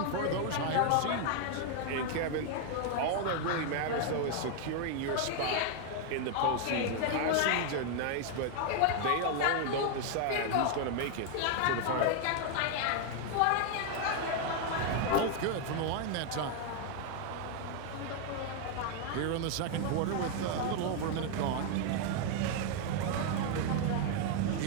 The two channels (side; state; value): both; different; correlation 0.00